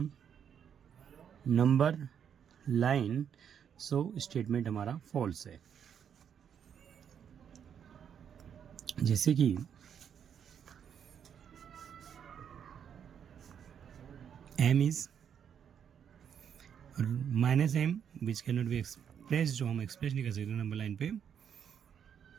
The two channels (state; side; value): quieter; left; 8.2 dB